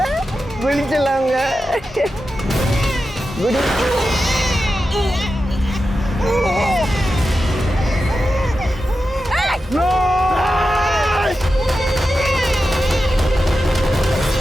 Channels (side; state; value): both; normal; correlation 0.91